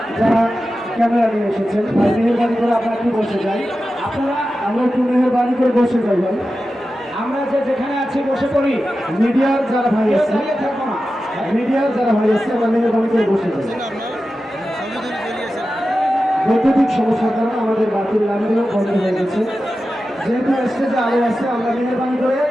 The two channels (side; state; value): both; normal; correlation 0.93